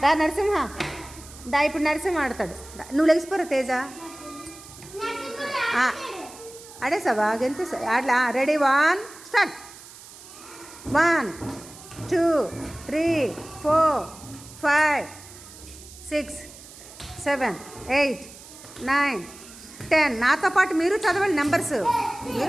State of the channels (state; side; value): noise; right; hiss, 18 dB below the sound